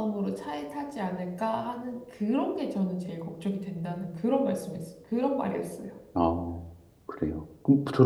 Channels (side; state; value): both; identical; correlation 1.00